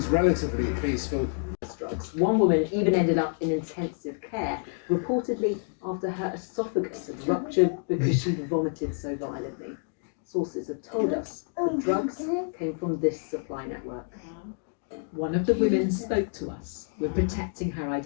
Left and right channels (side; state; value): right; silent; 59 dB below the other